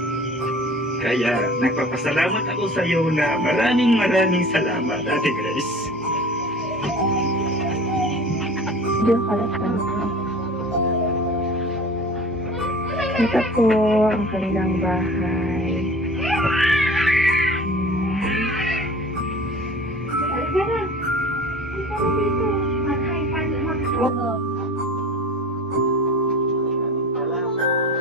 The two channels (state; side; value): normal; both; correlation 0.41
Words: Kaya nagpapasalamat ako sa iyo na maraming salamat, Ate Grace. Ito po ang kanilang bahay.